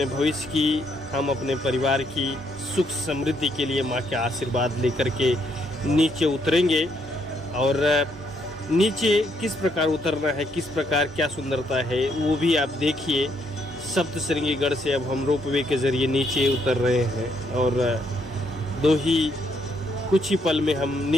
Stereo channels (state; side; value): normal; both; correlation 0.73